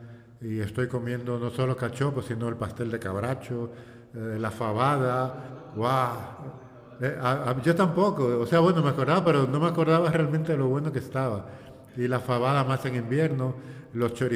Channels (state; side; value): identical; both; correlation 1.00